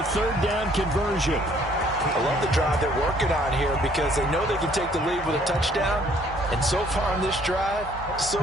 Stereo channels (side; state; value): both; normal; correlation 0.61